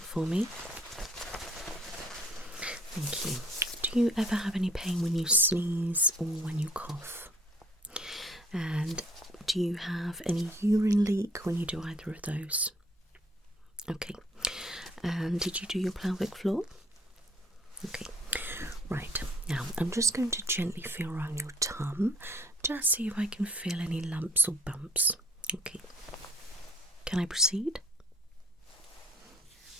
for me. Thank you. Do you ever have any pain when you sneeze or when you cough? And do you have any urine leak when you do either of those? Okay. And did you do your pelvic floor? Okay, right, now I'm just going to gently feel around your tum, just see if I can feel any lumps or bumps. Okay, can I proceed?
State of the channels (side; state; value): both; normal; correlation 0.58